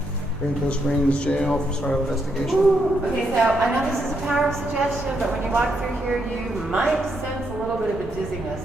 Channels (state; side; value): normal; both; correlation 0.78